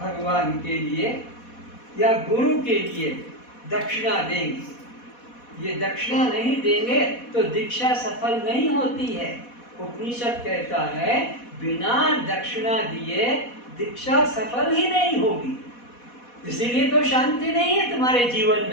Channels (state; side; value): late; right; 4.1 ms